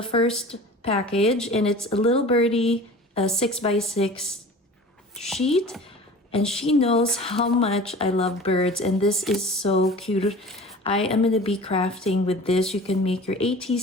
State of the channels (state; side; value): normal; both; correlation 0.40